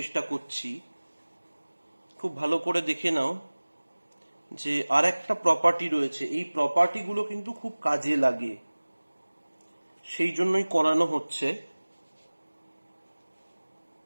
করছি। খুব ভালো করে দেখে নাও যে আর একটা প্রপার্টি রয়েছে, এই প্রপার্টিগুলো কিন্তু খুব কাজে লাগে, সেই জন্যই করানো হচ্ছে।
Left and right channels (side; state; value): both; inverted; correlation -1.00